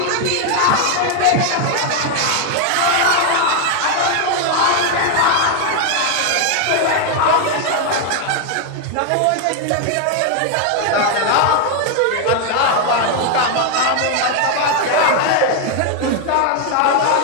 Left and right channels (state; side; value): different; both; correlation 0.01